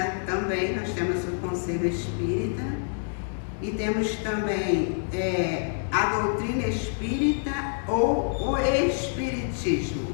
também, nós temos o Conselho Espírita e temos também a doutrina espírita ou o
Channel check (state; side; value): silent; right; 60 dB below the other